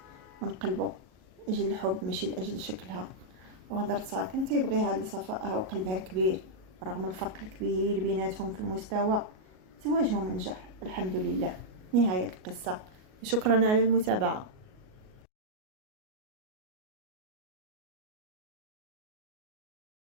من قلبه أجل الحب ماشي لأجل شكلها، وهضرتها كان تيبغيها لصفائها وقلبها الكبير. رغم الفرق الكبير بيناتهم في المستوى، زواجهم نجح الحمد لله. نهاية القصة، شكرا على المتابعة.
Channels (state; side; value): late; left; 38 ms